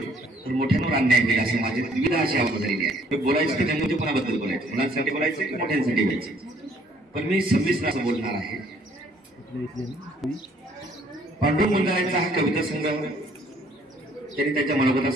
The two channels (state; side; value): normal; both; correlation 0.62